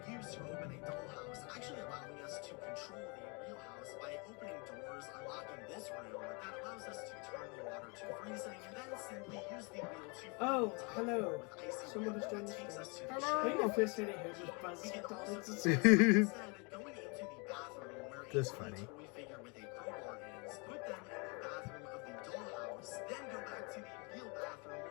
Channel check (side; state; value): right; quieter; 31.7 dB